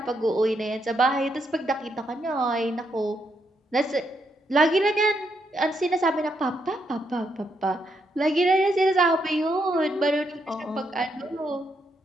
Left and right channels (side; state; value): both; normal; correlation 0.78